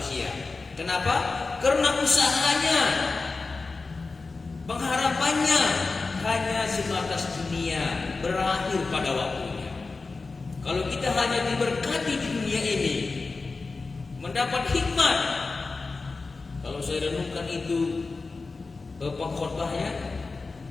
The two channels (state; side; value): quieter; right; 3.9 dB